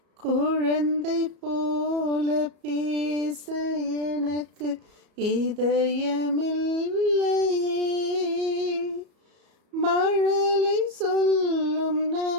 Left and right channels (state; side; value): late; left; 34 ms